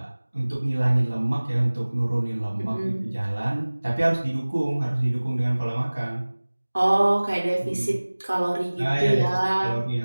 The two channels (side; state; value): both; inverted; correlation -1.00